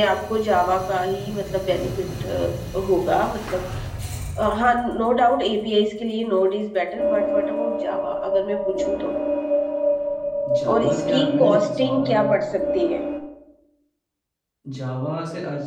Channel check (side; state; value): both; identical; correlation 1.00